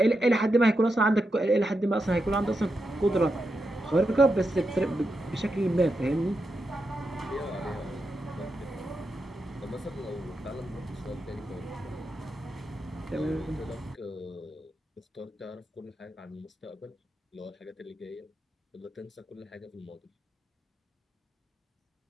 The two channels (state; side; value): normal; both; correlation 0.86